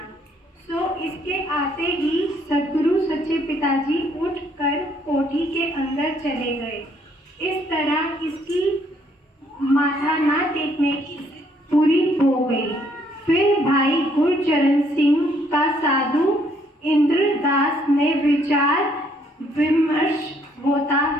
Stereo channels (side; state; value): both; normal; correlation 0.67